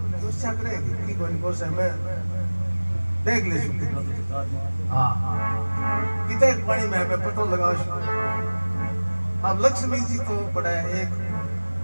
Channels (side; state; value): both; inverted; correlation -1.00